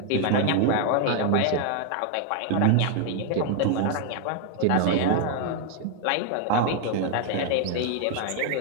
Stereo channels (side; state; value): both; different; correlation 0.00